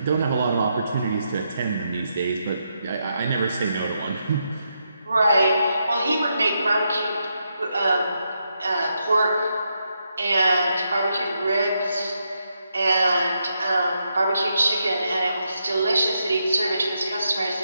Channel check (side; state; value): both; inverted; correlation -0.82